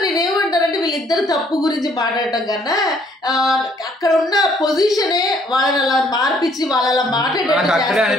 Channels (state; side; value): normal; both; correlation 0.64